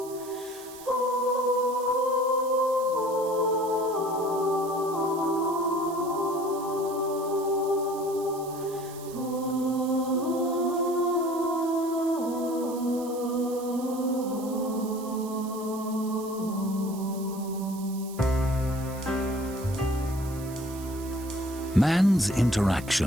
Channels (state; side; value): noise; right; hiss, 17 dB below the sound